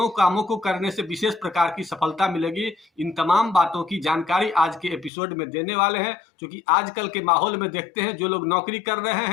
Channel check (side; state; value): right; drops out; at 5.1 s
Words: कामों को करने से विशेष प्रकार की सफलता मिलेगी। इन तमाम बातों की जानकारी आज के एपिसोड में देने वाले हैं। क्योंकि आजकल के माहौल में देखते हैं जो लोग नौकरी कर रहे